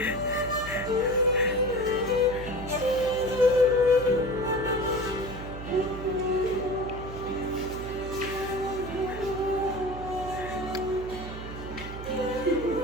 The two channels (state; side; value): noise; right; hum, 10 dB below the sound